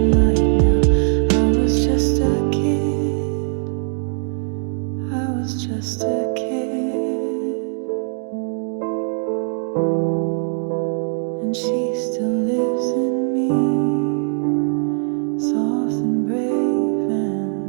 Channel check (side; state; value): left; silent; 62 dB below the other